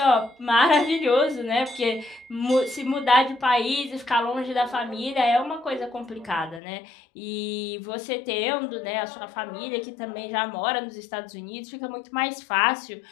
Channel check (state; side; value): drops out; right; at 6.6 s